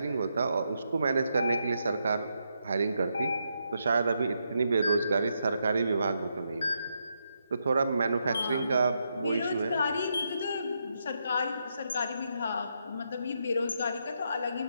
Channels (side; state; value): both; inverted; correlation -0.81